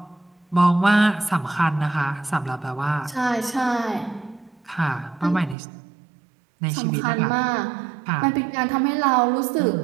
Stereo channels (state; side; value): drops out; left; at 5.6 s